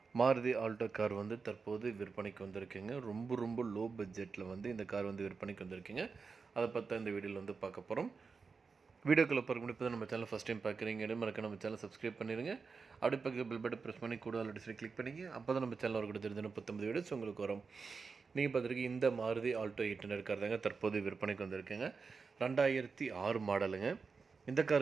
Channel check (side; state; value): left; quieter; 4.9 dB